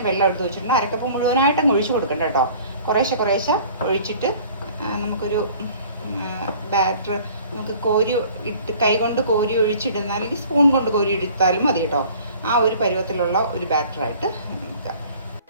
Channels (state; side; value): inverted; both; correlation -0.50